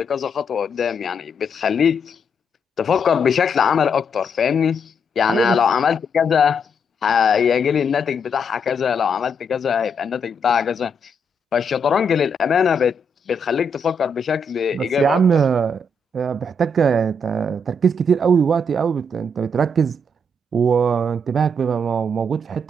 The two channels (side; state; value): both; normal; correlation 0.77